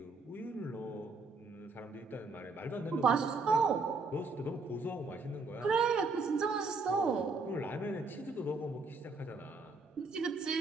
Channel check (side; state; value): left; quieter; 3.8 dB